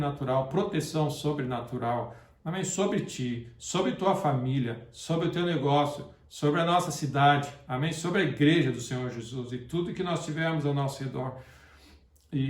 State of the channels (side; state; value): both; identical; correlation 1.00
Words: proteção sobrenatural, amém? Sobre ti, sobre tua família, sobre o teu negócio, sobre a nossa cidade, amém? Sobre a igreja do Senhor Jesus e tudo que nós tivermos ao nosso redor.